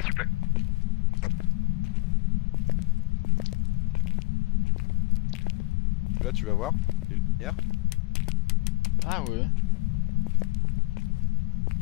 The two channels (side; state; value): right; quieter; 24.4 dB